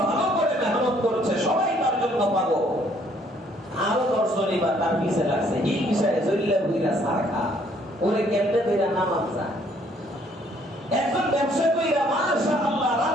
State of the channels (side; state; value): both; normal; correlation 0.64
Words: ভালো করে মেহনত করেছে, সবাই তার জন্য পাগল। আরো 10 জনই বা তার পিছে লাগছে, হিংসায় জল্লা বুইরা সারখা ওরে কেমনে বেরা নামান যায়। একজন ব্যবসা কইরা মাশাআল্লাহ